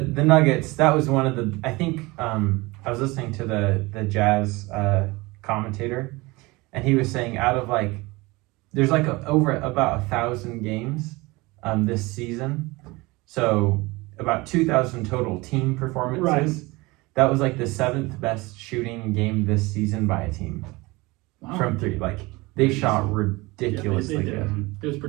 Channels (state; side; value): quieter; left; 23.0 dB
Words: Nuggets, that was one of the, I think, I was listening to the Jazz commentator, and he was saying out of like there's like over about 1,000 games this season, so about 2,000 total team performances. Right. That was like the 7th best shooting game this season by a team from 3. Like they shot ridiculously they did. good. It was